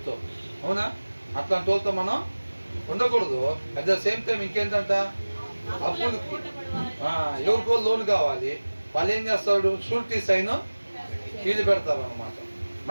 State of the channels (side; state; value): both; inverted; correlation -1.00